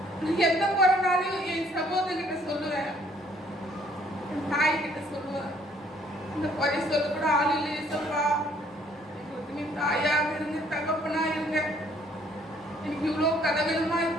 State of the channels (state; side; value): normal; both; correlation 0.62